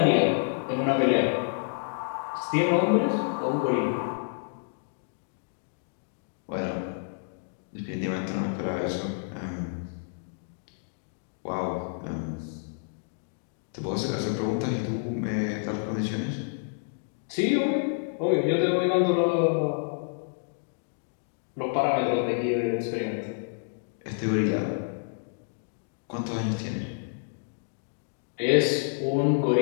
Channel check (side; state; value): right; silent; digital silence